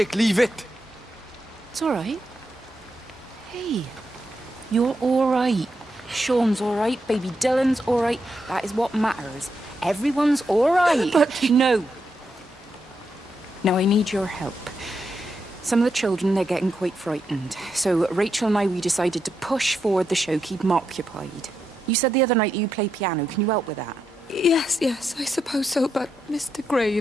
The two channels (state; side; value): normal; both; correlation 0.83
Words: leave it! It's all right. Hey, you're all right. Sean's all right, baby Dylan's all right. That is what matters. Everyone's all right. But... No. Now, I need your help. Some of the children, they're getting quite frightened. So Rachel and I, we decided to push forward the show, keep them occupied. You said the other night you play piano. Can you help with that? Yes, I suppose so, but Mr.